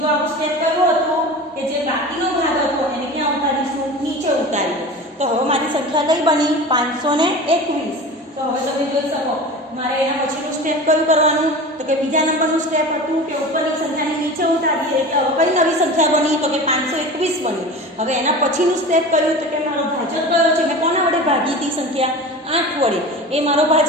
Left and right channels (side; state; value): both; normal; correlation 0.33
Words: આપણું સ્ટેપ કયું હતું કે જે બાકીનો ભાગ હતો એને ક્યાં ઉતારીશું? નીચે ઉતારીએ. તો હવે મારી સંખ્યા કઈ બની? 521. તો હવે તમે જોઈ શકો મારે એના પછીનું સ્ટેપ કયું કરવાનું? તો કે બીજા નંબરનું સ્ટેપ હતું કે ઉપરની સંખ્યાને નીચે ઉતારીએ. એટલે હવે કઈ નવી સંખ્યા બની? તો કે 521 બની. હવે એના પછીનું સ્ટેપ કયું? તો કે મારો ભાજક કયો છે? મેં કોના વડે ભાગી હતી સંખ્યા? 8 વડે. એ મારો